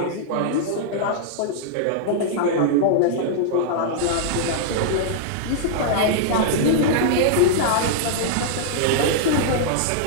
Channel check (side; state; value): both; different; correlation -0.02